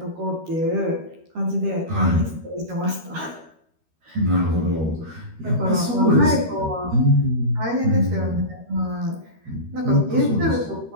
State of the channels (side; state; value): left; late; 13 ms